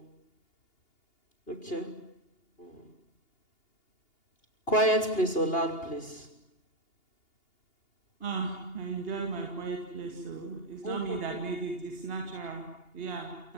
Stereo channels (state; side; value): late; right; 2.8 ms